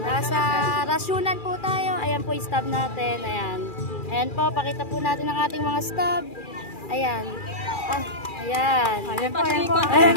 Nasa rasyunan po tayo. Ayan po yung stab natin. Ayan. Ayan po, pakita po natin ang ating mga stab. Ayan. Ayan. Ayan po, ayan po.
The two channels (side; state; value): right; late; 2.4 ms